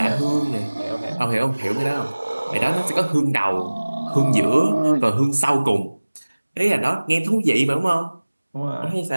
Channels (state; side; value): inverted; both; correlation -1.00